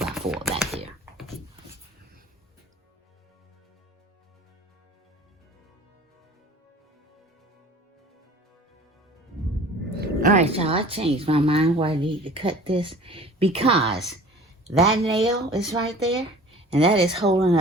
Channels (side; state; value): both; normal; correlation 0.45